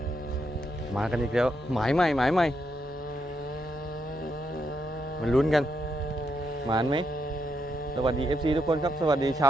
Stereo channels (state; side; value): normal; both; correlation 0.80